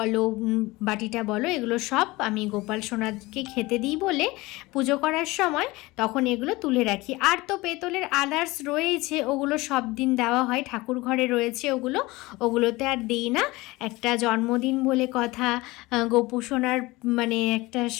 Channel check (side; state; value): right; quieter; 21.3 dB